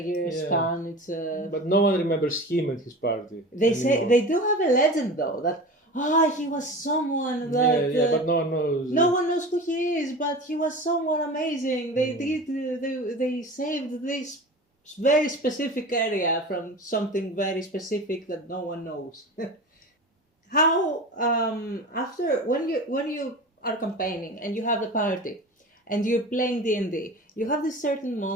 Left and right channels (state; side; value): normal; both; correlation 0.33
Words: years span. But no one remembers him and his party. They do have a legend though that he was someone that but no one knows. No one knows who he is, but he was someone amazing. They saved this very specific area from something very specific that no one knows. How after when you are campaigning and you have the party and you're playing D&D, you have these certain